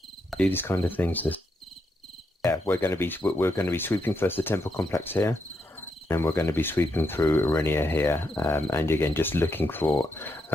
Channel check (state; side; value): normal; both; correlation 0.81